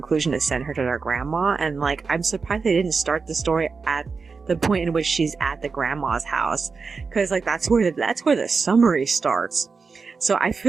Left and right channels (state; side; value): quieter; left; 4.8 dB